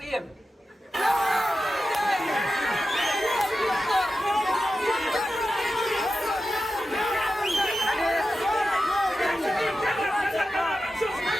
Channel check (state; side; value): normal; both; correlation 0.92